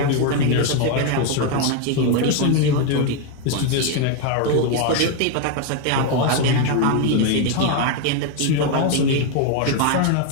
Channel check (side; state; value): both; different; correlation 0.01